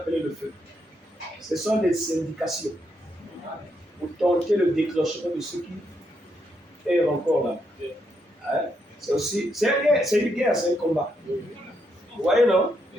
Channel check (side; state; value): both; normal; correlation 0.78